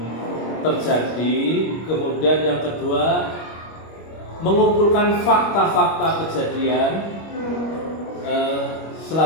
terjadi, kemudian yang kedua mengumpulkan fakta-fakta kejadian.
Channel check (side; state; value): right; late; 25 ms